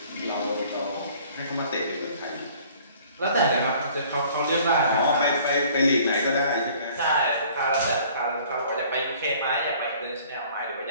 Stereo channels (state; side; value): inverted; both; correlation -0.53